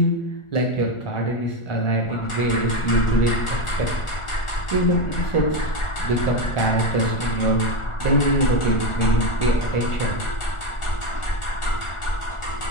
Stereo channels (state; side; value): late; right; 1.4 ms